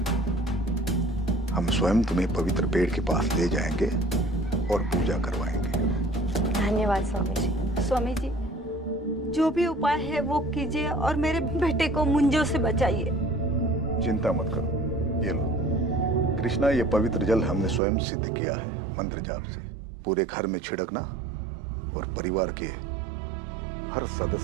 हम स्वयं तुम्हें पवित्र पेड़ के पास ले जाएंगे और पूजा करवाएंगे। धन्यवाद स्वामी जी। स्वामी जी, जो भी उपाय है वो कीजिए और मेरे बेटे को मुंजों से बचाइए। चिंता मत करो, ये लो। कृष्णा, ये पवित्र जल हमने स्वयं सिद्ध किया है मंत्र जाप से। पूरे घर में छिड़कना और परिवार के हर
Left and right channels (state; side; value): drops out; left; at 17.8 s